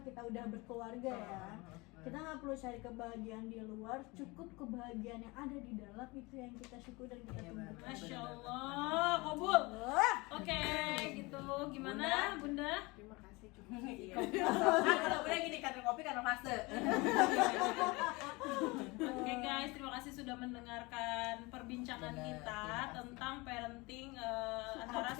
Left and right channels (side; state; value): right; quieter; 24.7 dB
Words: kita udah berkeluarga ya, kita nggak perlu cari kebahagiaan di luar, cukup kebahagiaan yang ada di dalam itu yang kita syukur dan kita Iya, tunggu. benar. Masya Allah, kabul. Wah, Oke, gitu. Gimana, Bunda? Terima kasih cukup. Iya. Kalau udah gini karena kopi karena fase. Oke guys, terima kasih sudah mendengarkan perbincangan Benar, kita terima kasih. tentang parenting antara